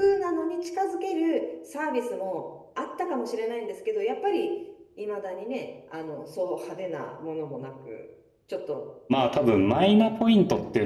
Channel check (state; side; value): identical; both; correlation 1.00